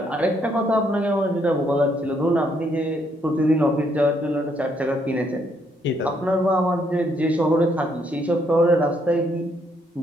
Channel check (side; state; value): both; normal; correlation 0.72